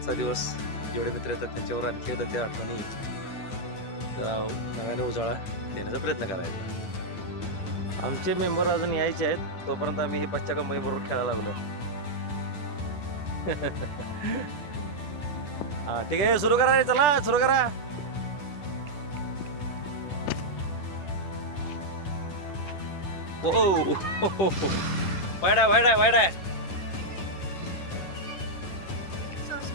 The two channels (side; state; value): right; late; 9.4 ms